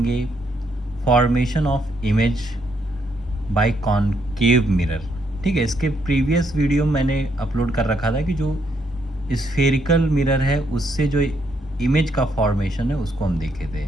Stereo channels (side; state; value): both; normal; correlation 0.74